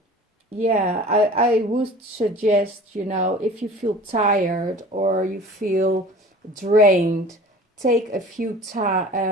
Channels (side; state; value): both; normal; correlation 0.43